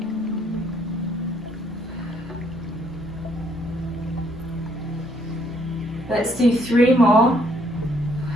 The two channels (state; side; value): normal; both; correlation 0.68